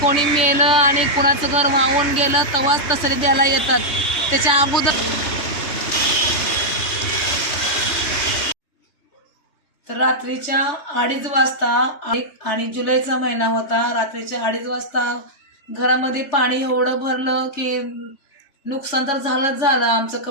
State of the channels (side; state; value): right; late; 3.3 ms